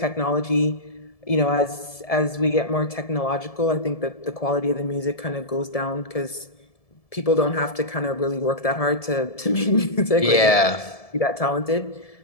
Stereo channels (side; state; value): right; late; 1.7 ms